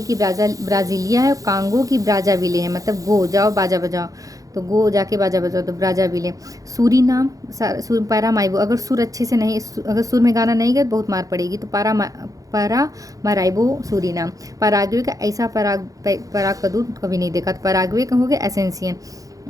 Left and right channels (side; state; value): left; late; 0.17 ms